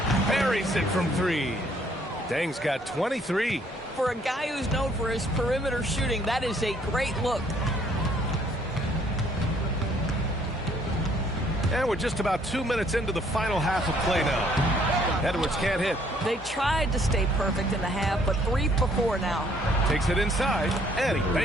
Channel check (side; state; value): both; normal; correlation 0.64